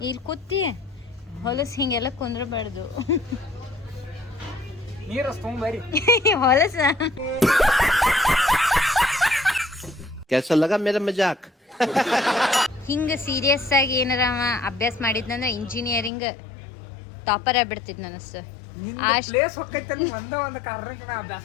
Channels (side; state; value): right; drops out; at 16.1 s